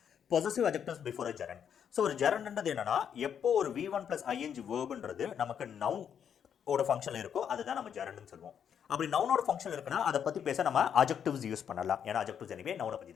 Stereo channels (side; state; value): right; quieter; 8.3 dB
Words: Possessive adjectives before a gerund. So ஒரு gerundன்றது என்னன்னா எப்போ ஒரு v1 plus ing verbன்றது நமக்கு noun ஓட ஃபங்க்ஷன்ல இருக்கோ அதுதான் நம்ம gerundன்னு சொல்லுவோம். அப்படி நவுனோட ஃபங்க்ஷன் இருக்குன்னா அதை பத்தி பேச நம்ம adjectives யூஸ் பண்ணலாம். ஏன்னா adjectives anyway நவுனை பத்தி